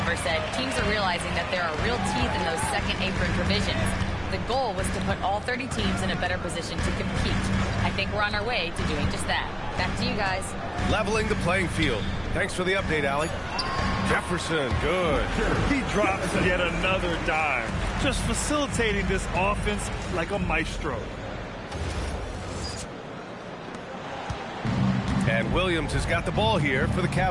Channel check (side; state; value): both; identical; correlation 1.00